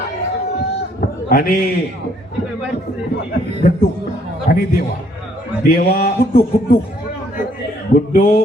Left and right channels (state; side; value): normal; both; correlation 0.66